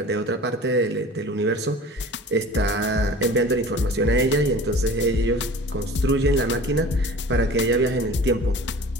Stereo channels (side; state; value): both; normal; correlation 0.41